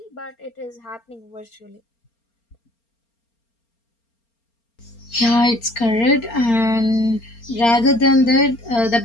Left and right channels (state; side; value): late; right; 4.3 ms